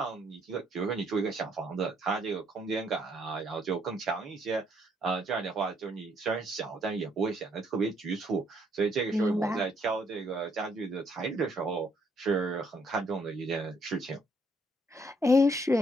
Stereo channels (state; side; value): normal; both; correlation 0.69